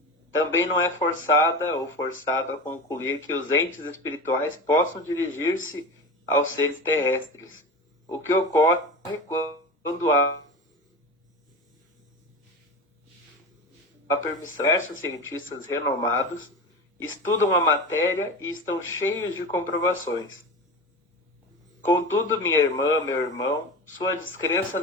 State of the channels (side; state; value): both; normal; correlation 0.28